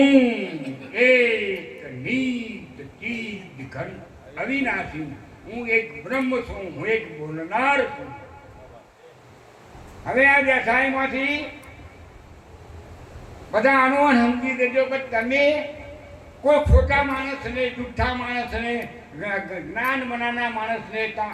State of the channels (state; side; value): identical; both; correlation 1.00